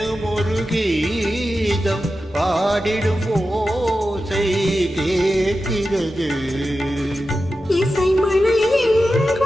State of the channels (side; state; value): both; normal; correlation 0.92